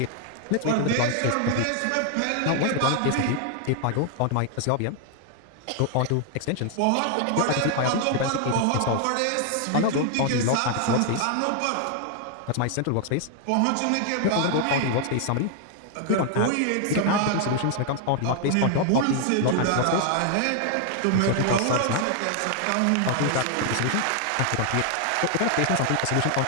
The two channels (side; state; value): both; different; correlation 0.00